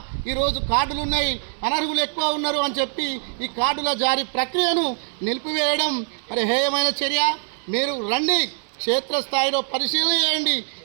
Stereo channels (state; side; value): silent; left; 60 dB below the other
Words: ఈరోజు కార్డులు ఉన్నాయి, అనర్హులు ఎక్కువ ఉన్నారు అని చెప్పి ఈ కార్డుల జారీ ప్రక్రియను నిలిపివేయడం మరి హేయమైన చర్య. మీరు రండి, క్షేత్రస్థాయిలో పరిశీలన చేయండి.